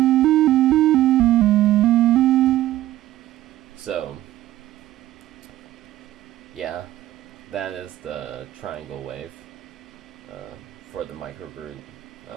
yeah, that is the triangle wave for the microBrute,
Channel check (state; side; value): quieter; left; 14.7 dB